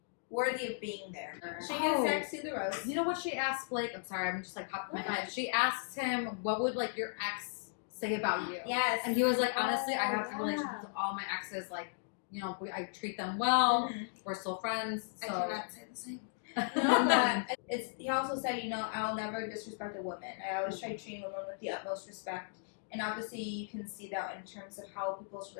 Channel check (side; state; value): right; silent; digital silence